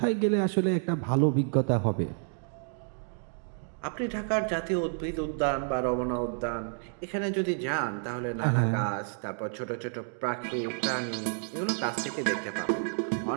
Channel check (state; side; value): silent; left; digital silence